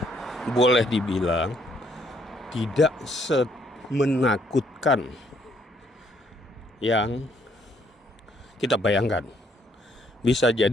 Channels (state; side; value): normal; both; correlation 0.68